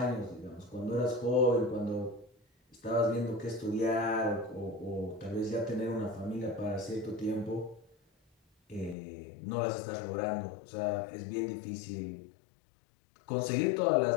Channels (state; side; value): drops out; right; at 9.0 s